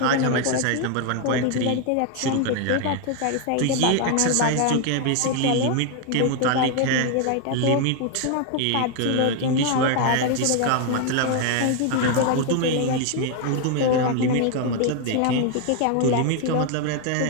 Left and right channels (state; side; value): different; both; correlation 0.01